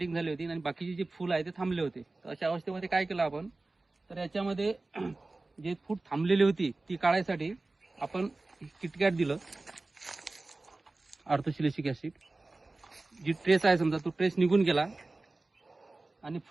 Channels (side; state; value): left; quieter; 3.2 dB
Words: झाली होती आणि बाकीचे जे फूल आहे ते थांबले होते. तर अशा अवस्थेमध्ये काय केलं आपण, तर याच्यामध्ये जे फूट थांबलेली होती ती काढायसाठी आपण किटकॅट दिलं, ऑर्थोसिलिसिक ॲसिड. जी ट्रेस आहे समजा तो ट्रेस निघून गेला आणि